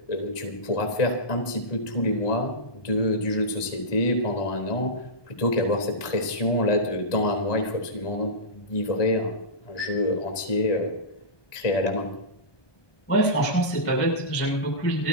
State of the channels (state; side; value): late; right; 1.2 ms